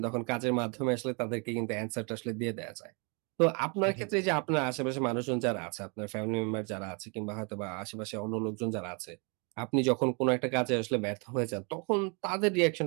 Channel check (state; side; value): quieter; left; 34.0 dB